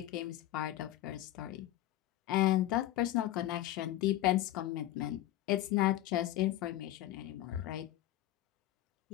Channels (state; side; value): quieter; right; 14.4 dB